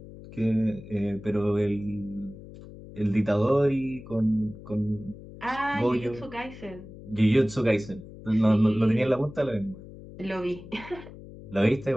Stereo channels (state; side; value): noise; left; hum, 16 dB below the sound